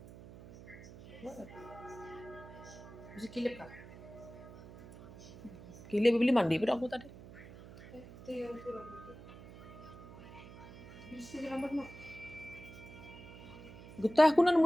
Bisa kilip kah? Gila beli mandi pada aku tadi. Itu yang tu rambut. Bisa je rambut mak. Getah aku nan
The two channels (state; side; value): noise; right; hum, 16 dB below the sound